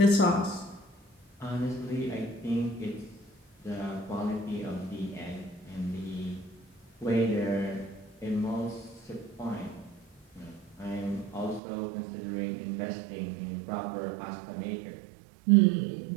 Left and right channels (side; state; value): left; drops out; at 11.6 s